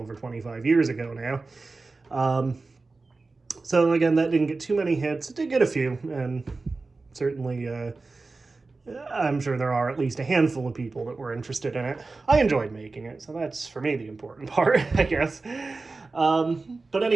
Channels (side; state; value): left; quieter; 3.7 dB